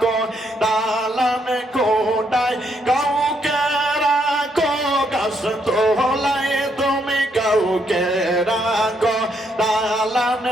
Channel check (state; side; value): normal; both; correlation 0.74